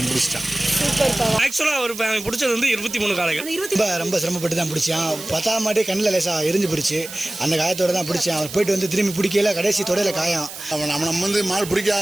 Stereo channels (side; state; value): right; noise; hiss, 12 dB below the sound